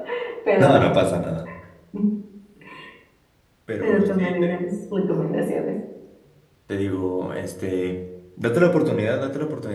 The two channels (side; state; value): both; identical; correlation 1.00